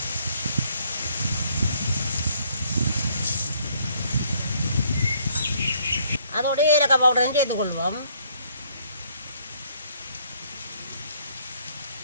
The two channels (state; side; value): inverted; both; correlation -0.65